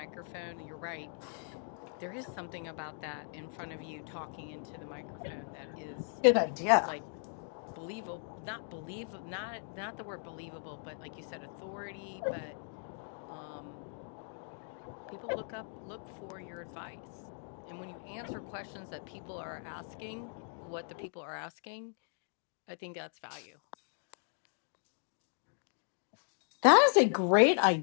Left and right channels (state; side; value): silent; right; 53 dB below the other